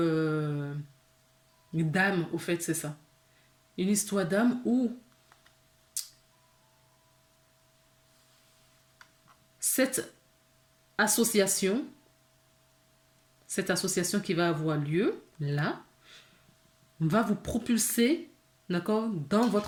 d'âme, au fait, c'est ça. Une histoire d'âme où cette association qui va avoir lieu, là, va vous propulser, d'accord, dans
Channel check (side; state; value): both; identical; correlation 1.00